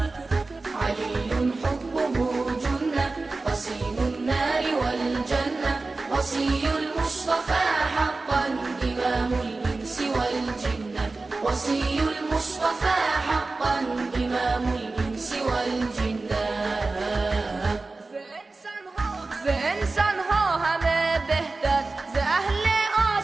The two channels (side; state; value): left; quieter; 3.5 dB